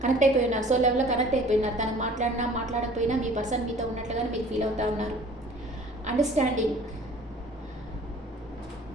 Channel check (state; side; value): normal; both; correlation 0.49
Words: సో లెవెల్లో కనెక్ట్ అయిపోయినారు. తను మాట్లాడకపోయినా మీ పర్సన్ మీతో ఉన్నట్లుగానే మీరు ఫీల్ అవుతూ ఉన్నారు. అండర్స్టాండింగ్,